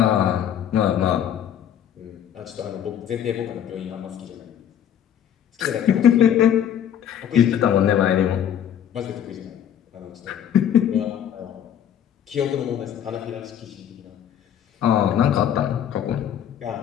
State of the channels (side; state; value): right; quieter; 9.7 dB